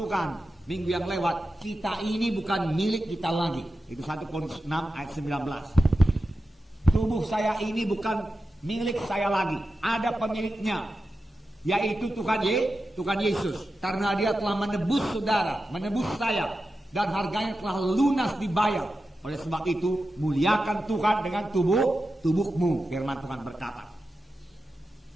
minggu yang lewat, kita ini bukan milik kita lagi. Itu 1 Korintus 6 ayat 19. Tubuh saya ini bukan milik saya lagi, ada pemiliknya, yaitu Tuhan Yesus. Karena Dia telah menebus saudara, menebus saya, dan harganya telah lunas dibayar. Oleh sebab itu, muliakan Tuhan dengan tubuhmu, firman Tuhan berkata.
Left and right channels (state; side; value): normal; both; correlation 0.91